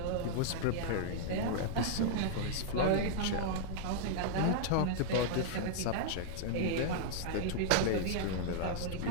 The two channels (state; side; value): different; both; correlation -0.01